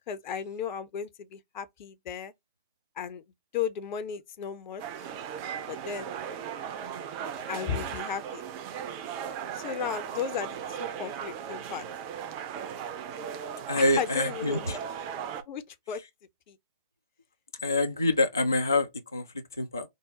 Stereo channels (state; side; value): inverted; both; correlation -0.46